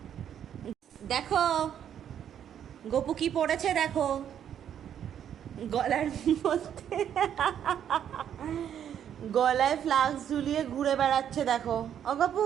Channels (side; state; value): left; quieter; 9.4 dB